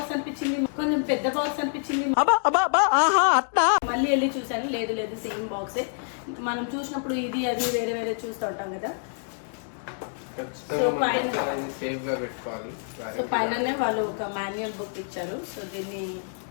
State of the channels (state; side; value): silent; right; digital silence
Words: అనిపించింది. మళ్ళీ వెళ్ళి చూసాను, లేదు సేమ్ బాక్సే. మనం చూసినప్పుడు ఇది అది వేరే చూస్తూ ఉంటాం కదా. సో పైననే వాళ్ళు ఒక మాన్యువల్ బుక్ ఇచ్చారు. సో దీన్ని